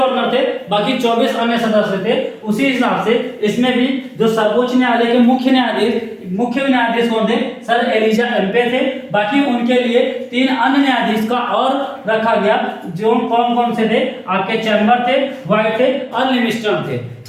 थे, बाकी 24 अन्य सदस्य थे। उसी हिसाब से इसमें भी जो सर्वोच्च न्यायालय के मुख्य न्यायाधीश कौन थे? सर एलिजा एम्पे थे। बाकी उनके लिए 3 अन्य न्यायाधीश का और रखा गया, जो कौन से थे? आपके चैम्बर थे, व्हाइट थे और लिमिस्टर थे।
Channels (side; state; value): both; identical; correlation 1.00